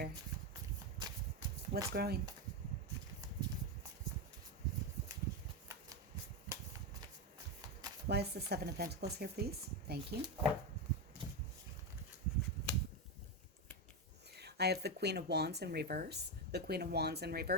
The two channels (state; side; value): normal; both; correlation 0.11